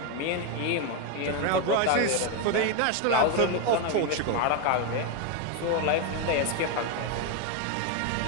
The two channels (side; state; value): both; different; correlation 0.02